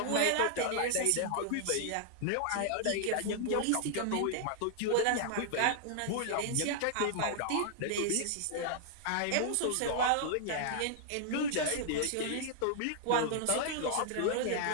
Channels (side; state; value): both; different; correlation -0.01